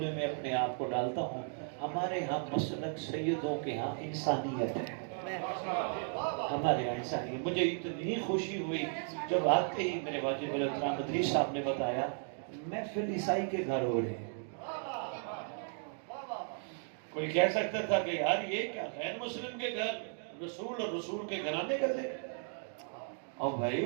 میں اپنے آپ کو ڈالتا ہوں. ہمارے ہاں مسلک سیدوں کے ہاں انسانیت ہے, ہمارے یہاں انسانیت. مجھے اتنی خوشی ہوئی جب آتے ہی میرے واجب الاحترام مدری صاحب نے بتایا محفل عیسائی کے گھر ہو رہے ہیں. کوئی کہہ سکتا تھا کہ یار یہ کیا غیر مسلم کے گھر, رسول اور رسول کے گھرانے کا ذکر. اور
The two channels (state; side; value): silent; left; 54 dB below the other